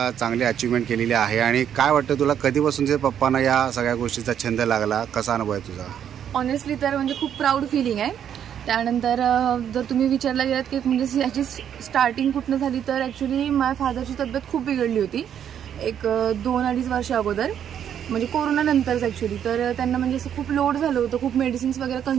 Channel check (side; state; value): left; quieter; 9.2 dB